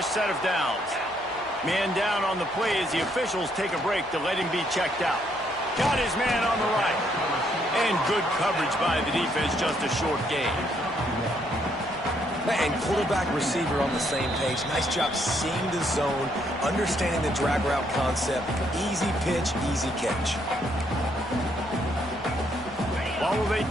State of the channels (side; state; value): both; normal; correlation 0.72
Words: set of downs. Man down on the play as the officials take a break to let him be checked out. Got his man on the right. And good coverage by the defense, just a short gain. And quarterback receiver on the same page. Nice job seeing the zone, understanding the drag route concept. Easy pitch, easy catch. Well, they